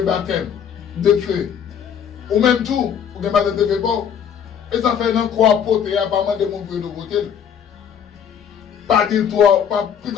baptême de feu. Ou même tout, pour que le baptême de feu bon. Et ça fait un croix pote et apparemment de mon peu de côté. Pas dire toi, pas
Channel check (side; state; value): right; quieter; 8.2 dB